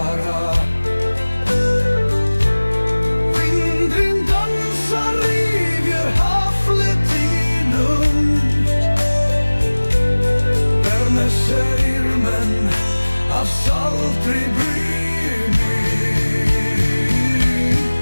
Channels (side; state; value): both; inverted; correlation -1.00